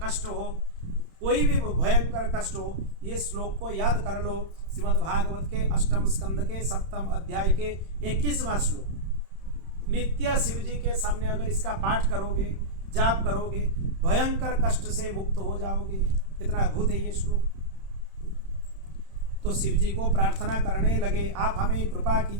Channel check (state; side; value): late; left; 31 ms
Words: कष्ट हो, कोई भी भयंकर कष्ट हो, ये श्लोक को याद कर लो। श्रीमद् भागवत के 8वें स्कंद के 7वें अध्याय के 21वां श्लोक। नित्य शिव जी के सामने अगर इसका पाठ करोगे, जाप करोगे, भयंकर कष्ट से मुक्त हो जाओगे। कितना अद्भुत है ये श्लोक। तो शिव जी को प्रार्थना करने लगे, आप हमें कृपा